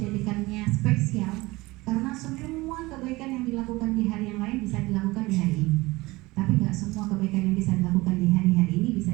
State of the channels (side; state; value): left; quieter; 21.3 dB